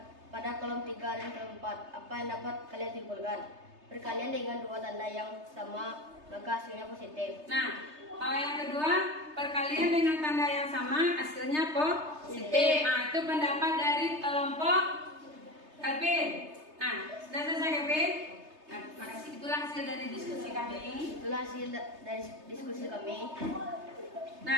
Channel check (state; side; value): late; left; 3.3 ms